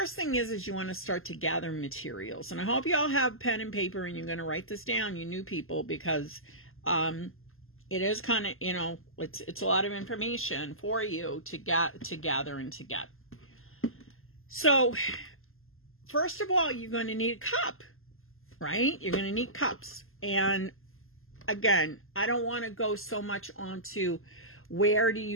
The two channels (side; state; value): right; late; 0.61 ms